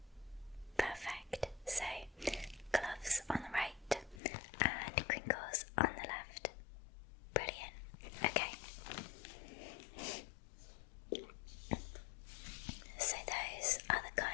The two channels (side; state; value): right; drops out; at 4.2 s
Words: Perfect. So, gloves on the right and crinkles on the left. Brilliant. Okay. So those are the